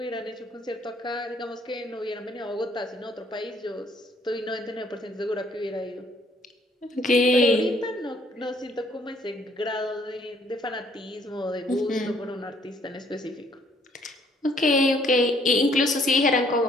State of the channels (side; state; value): both; normal; correlation 0.64